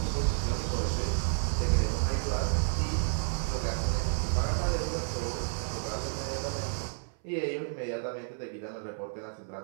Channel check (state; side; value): silent; left; 57 dB below the other